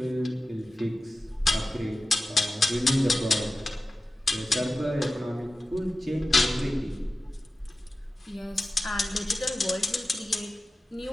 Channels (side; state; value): both; normal; correlation 0.95